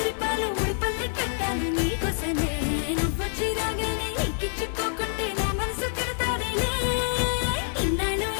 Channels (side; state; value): right; silent; 60 dB below the other